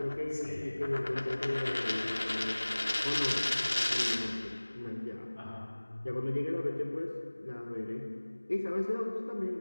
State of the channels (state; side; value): inverted; both; correlation -1.00